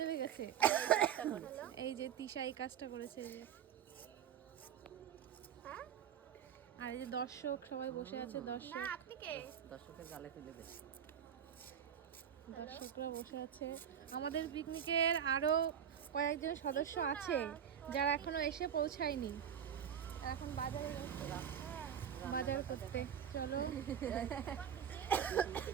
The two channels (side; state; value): left; quieter; 8.8 dB